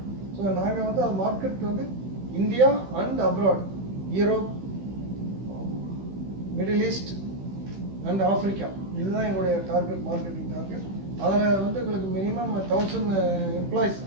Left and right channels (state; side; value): late; left; 15 ms